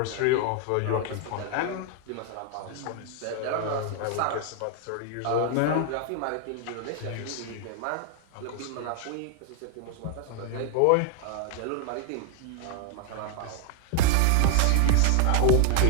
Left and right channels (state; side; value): different; both; correlation 0.00